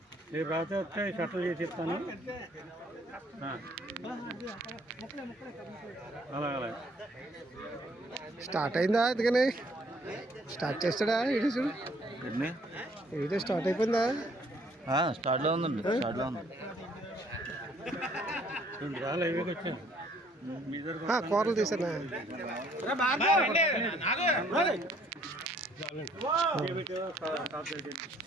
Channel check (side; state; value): both; normal; correlation 0.62